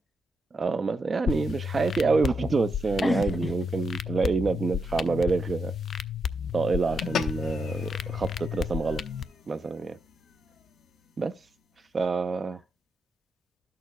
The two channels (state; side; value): normal; both; correlation 0.82